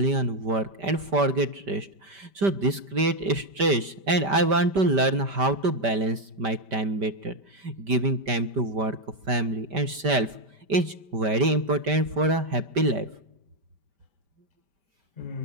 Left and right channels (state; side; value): late; left; 5.1 ms